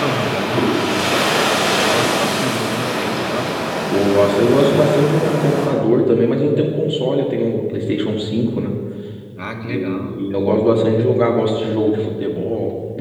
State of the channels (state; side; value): identical; both; correlation 1.00